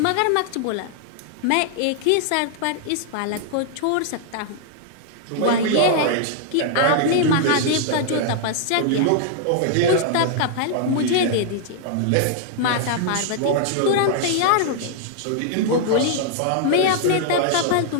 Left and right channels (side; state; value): both; different; correlation -0.01